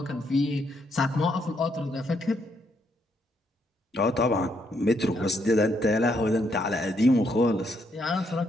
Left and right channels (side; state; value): both; normal; correlation 0.75